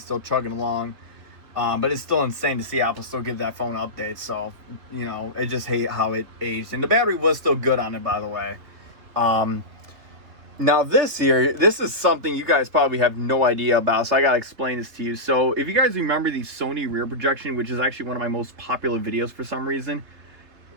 still chugging along. But it's still insane to see Apple still give that phone updates. So, you know, I just hate how it aged. And the battery was still good on it, by the way. Now this here, this is something you guys probably have no idea about, so I gotta explain this to you. So if you guys remember the Sony rear projection, which is actually one of my most popular videos for some reason,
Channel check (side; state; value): left; late; 3.2 ms